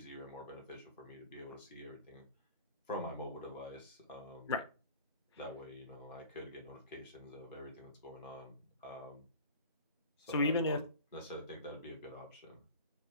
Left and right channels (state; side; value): inverted; both; correlation -0.39